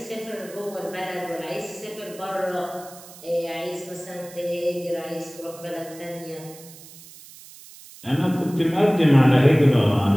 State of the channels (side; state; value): right; noise; hiss, 19 dB below the sound